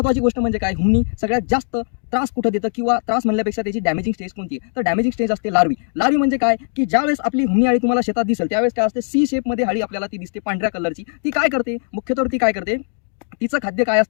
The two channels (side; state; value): right; silent; 66 dB below the other